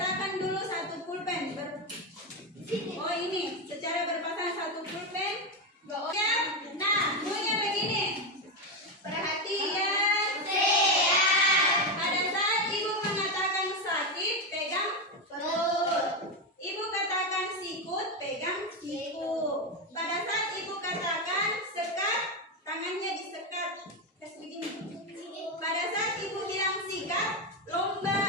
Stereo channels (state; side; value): normal; both; correlation 0.10